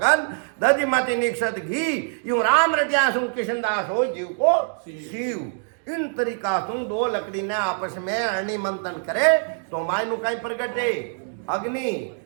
दधि मत निक्षत घी यूं राम रटिया सु किशनदास हो जीव को शिव इन तरीका सु दो लकड़ी ने आपस में अरणि मंथन करे तो मायनु कहीं प्रगटे अग्नि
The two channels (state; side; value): silent; left; digital silence